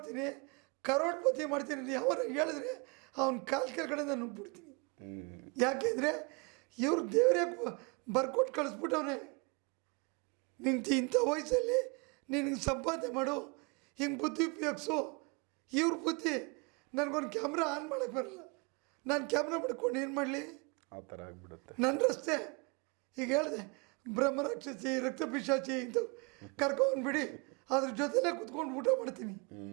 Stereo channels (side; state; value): left; quieter; 30.6 dB